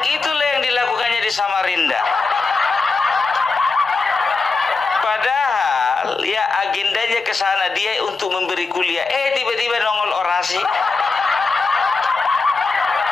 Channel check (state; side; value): quieter; right; 4.2 dB